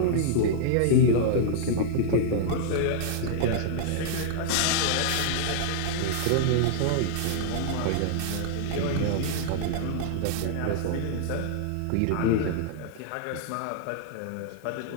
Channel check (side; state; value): both; different; correlation -0.01